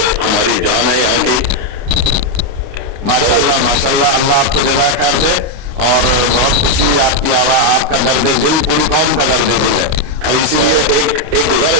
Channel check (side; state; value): left; late; 29 ms